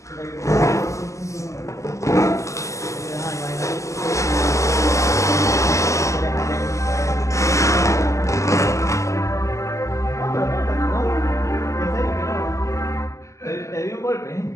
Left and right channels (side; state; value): right; late; 0.15 ms